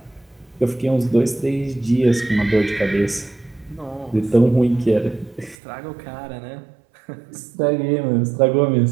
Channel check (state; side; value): drops out; left; at 5.6 s